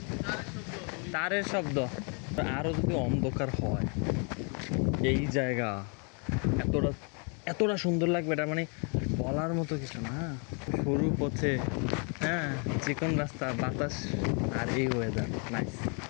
তারের শব্দ। আরো যদি অন্ধকার হয় এই জায়গা এতটা এতটা সুন্দর লাগবে, এটা মানে বলার মতো কিছু না। সরু পথে, হ্যাঁ, চিকন রাস্তা, বাতাস, আর এই ওয়েদার নাইস,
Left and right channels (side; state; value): right; quieter; 37.1 dB